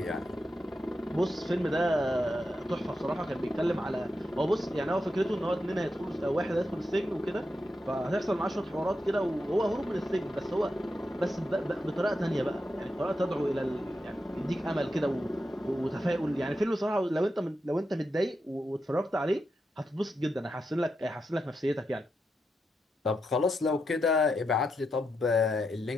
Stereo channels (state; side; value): normal; both; correlation 0.86